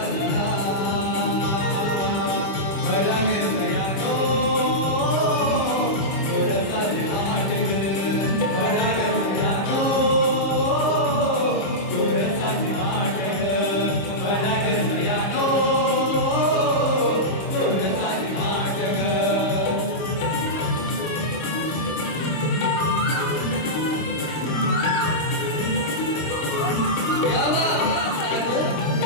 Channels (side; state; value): right; late; 26 ms